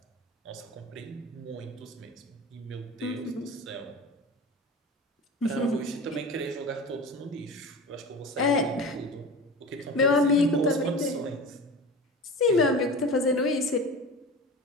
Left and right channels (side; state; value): both; normal; correlation 0.33